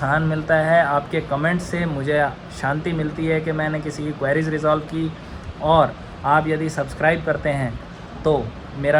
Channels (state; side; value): identical; both; correlation 1.00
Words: मिलता है, आपके कमेंट्स से मुझे शांति मिलती है कि मैंने किसी की क्वेरीज रिजॉल्व की, और आप यदि सब्सक्राइब करते हैं तो